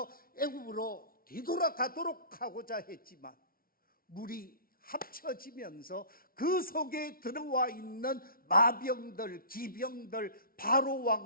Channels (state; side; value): late; right; 0.43 ms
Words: 애굽으로 뒤돌아가도록 하고자 했지만 물이 합쳐지면서 그 속에 들어와 있는 마병들, 기병들, 바로